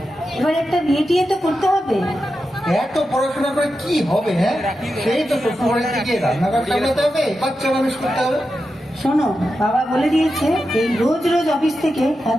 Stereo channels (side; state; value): both; normal; correlation 0.90